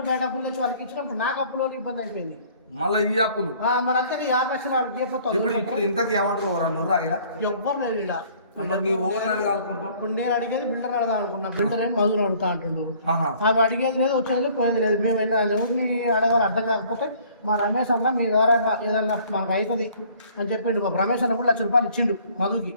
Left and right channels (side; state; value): both; inverted; correlation -0.56